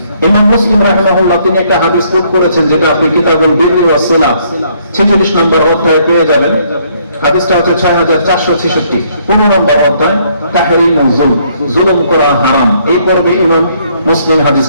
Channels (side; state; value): both; inverted; correlation -0.67